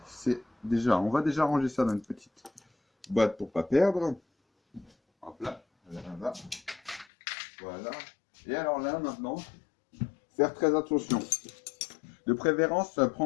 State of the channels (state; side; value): drops out; right; at 7.1 s